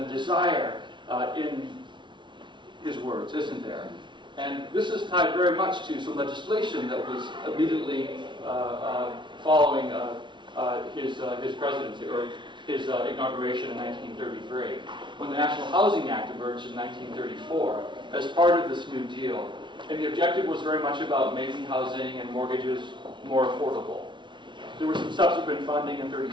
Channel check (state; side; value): late; left; 0.23 ms